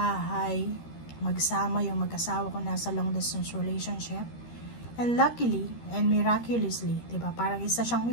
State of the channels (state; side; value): late; right; 13 ms